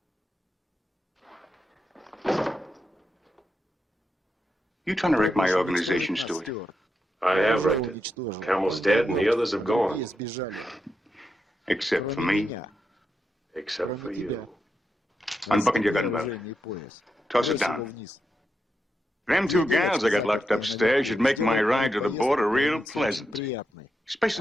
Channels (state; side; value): normal; both; correlation 0.85